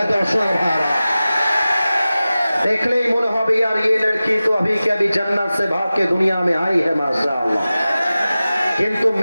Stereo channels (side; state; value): both; inverted; correlation -0.96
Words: দর্শক ভাড়া দেখলেই মনে হবে यार ये लड़की तो अभी के अभी जन्नत से भाग के दुनिया में आई है माशाअल्लाह। কিন্তু